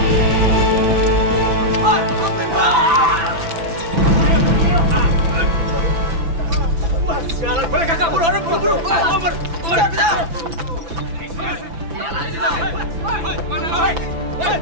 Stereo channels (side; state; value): left; late; 6.0 ms